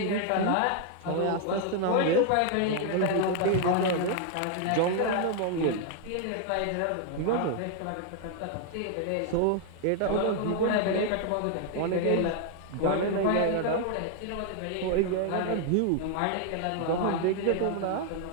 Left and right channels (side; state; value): both; different; correlation 0.00